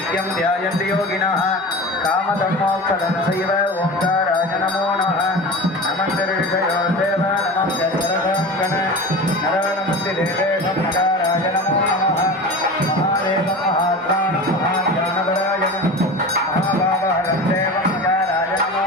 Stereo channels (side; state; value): both; normal; correlation 0.32